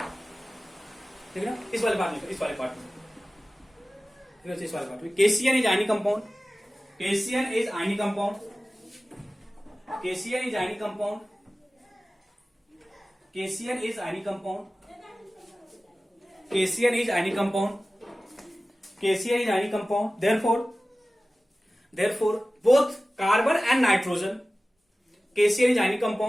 ठीक है ना? इस वाले पार्ट में, इस वाले पार्ट में, ठीक है? इस वाले पार्ट में KCN is ionic compound, KCN is ionic compound, KCN is ionic compound, KCN is ionic compound, KCN is ionic compound, KCN is ionic compound. therefore both carbon and nitrogen, KCN is ionic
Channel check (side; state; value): both; normal; correlation 0.96